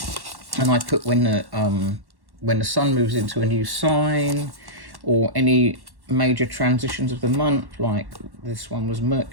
And I put when the sun moves into a new sign, or any major transitions of the month, like this one was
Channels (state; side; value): late; left; 1.1 ms